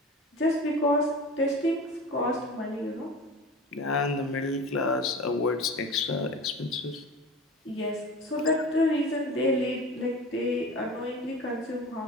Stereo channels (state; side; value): normal; both; correlation 0.35